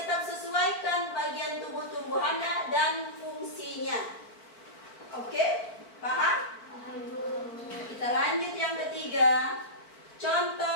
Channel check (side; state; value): right; late; 4.5 ms